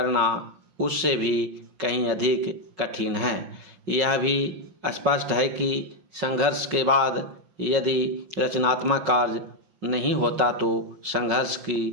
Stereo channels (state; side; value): late; left; 5.4 ms